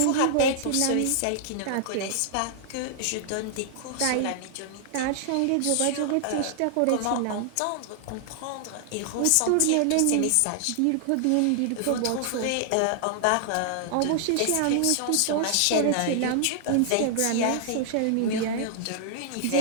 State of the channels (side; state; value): both; different; correlation -0.01